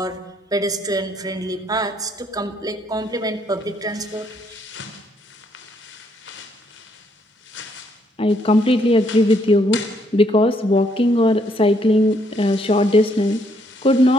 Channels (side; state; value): both; normal; correlation 0.71